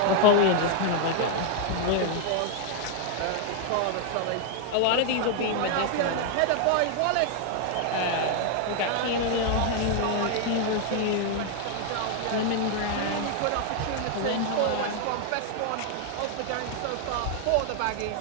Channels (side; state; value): both; different; correlation 0.00